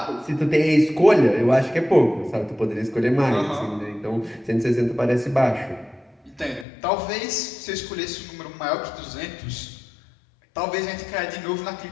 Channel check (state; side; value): drops out; right; at 6.7 s